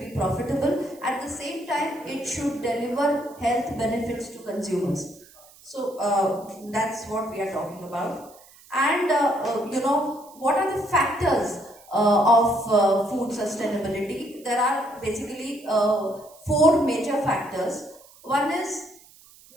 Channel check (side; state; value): right; noise; hiss, 24 dB below the sound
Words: profitable. At the same time, it should deliver health benefits to consumers. So that's what we are talking about. And what are the factors of food sustainability? There are basically 4 major factors. One is